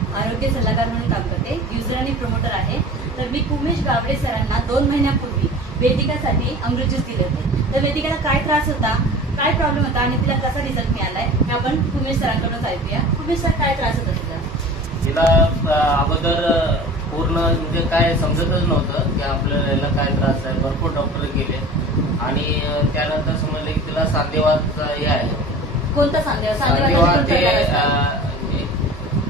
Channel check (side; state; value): both; normal; correlation 0.39